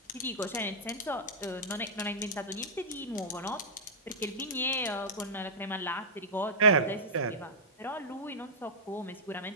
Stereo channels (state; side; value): normal; both; correlation -0.10